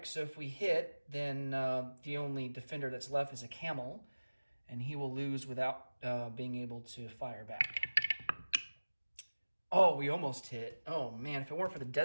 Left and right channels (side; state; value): both; inverted; correlation -1.00